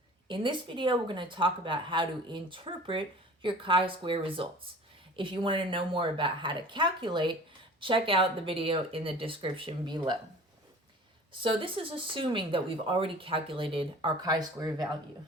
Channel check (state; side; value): normal; both; correlation 0.43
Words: In this video, we're going to talk about how to interpret your chi-square results. If you want to know more about how to calculate, check out the video in the description below. So this is assuming that we've already calculated our chi-square value.